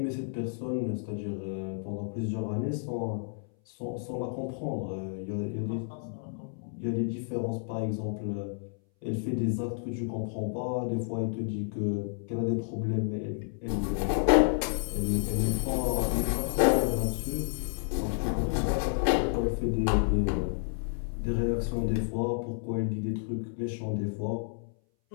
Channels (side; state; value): right; silent; 57 dB below the other